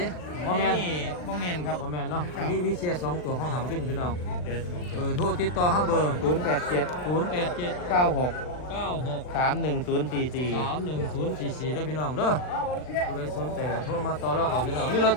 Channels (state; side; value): late; right; 39 ms